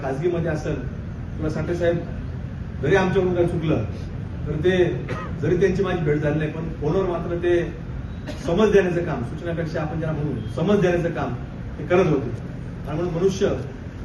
खासगीमध्ये असेल किंवा साठे साहेब जरी आमच्याकडून काही चुकलं तर ते जरी त्यांची माझी भेट झाली नाही पण फोनवर मात्र ते समज देण्याचं काम, सूचनापेक्षा आपण ज्याला म्हणून समज देण्याचं काम ते करत होते. आणि म्हणून मनुष्य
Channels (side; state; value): both; identical; correlation 1.00